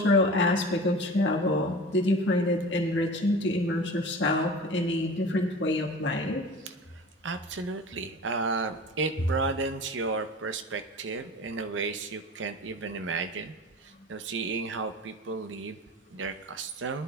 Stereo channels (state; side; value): normal; both; correlation 0.36